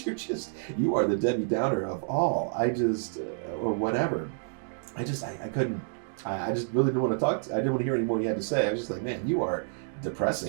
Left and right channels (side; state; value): left; silent; digital silence